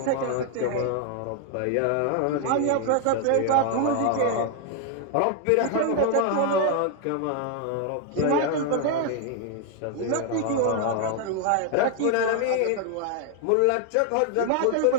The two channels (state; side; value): different; both; correlation 0.00